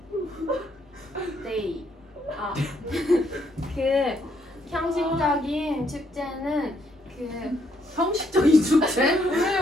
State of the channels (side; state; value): both; normal; correlation 0.72